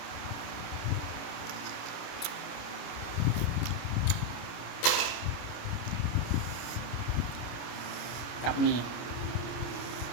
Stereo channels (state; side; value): late; right; 26 ms